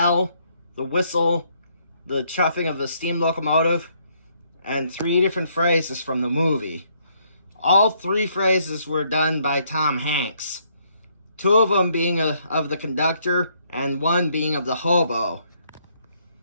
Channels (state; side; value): inverted; both; correlation -0.70